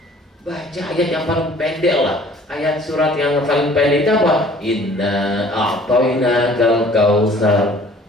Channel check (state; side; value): normal; both; correlation 0.53